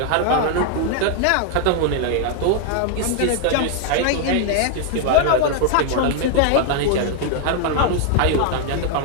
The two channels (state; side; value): different; both; correlation 0.00